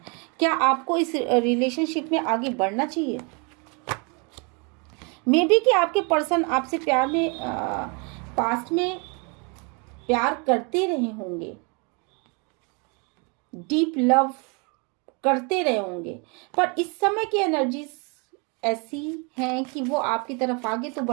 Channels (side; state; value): left; quieter; 33.3 dB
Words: क्या आपको इस रिलेशनशिप में आगे बढ़ना चाहिए? मे बी कि आपके पर्सन आपसे प्यार में पास्ट में प्यार करते रहे होंगे, डीप लव करते रहे होंगे, पर इस समय की एनर्जीज ऐसी हैं कि वो आपकी तरफ आगे तो